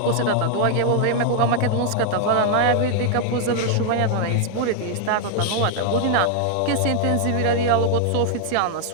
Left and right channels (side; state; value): both; different; correlation 0.00